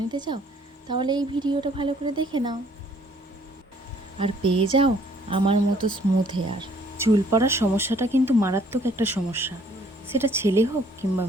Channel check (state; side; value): normal; both; correlation 0.61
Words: নিতে চাও, তাহলে এই ভিডিওটা ভালো করে দেখে নাও আর পেয়ে যাও আমার মতো স্মুথ হেয়ার। চুল পড়ার সমস্যাটা কিন্তু মারাত্মক একটা সমস্যা, সেটা ছেলে হোক কিংবা